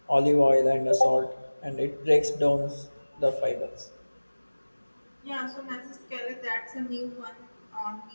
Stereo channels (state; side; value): inverted; both; correlation -1.00